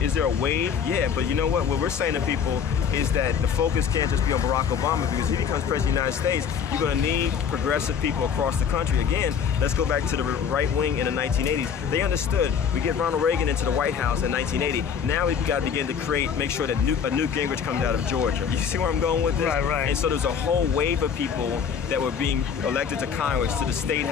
is there a wave? Yeah, but you know what? What we're saying to people is that the focus can't just be on Barack Obama, because if he becomes president of the United States, you're going to need progressive people across the country. Again, let's go back to the right wing in the 1980s. They understood. We get Ronald Reagan into the White House in 1980. Now we've got to begin to make sure that a Newt Gingrich comes out of Georgia. You see where I'm going with this? Right. And so there's a whole wave of people that were being elected to Congress, to the state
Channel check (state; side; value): quieter; right; 7.2 dB